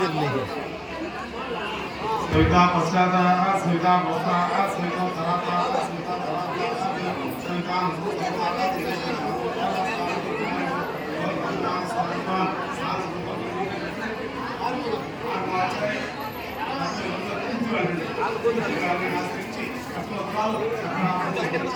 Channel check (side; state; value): both; identical; correlation 1.00